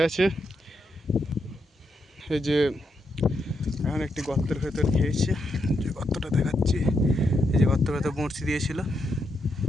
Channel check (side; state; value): both; normal; correlation 0.81